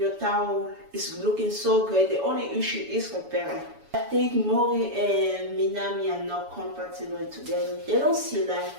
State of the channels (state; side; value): late; left; 7.0 ms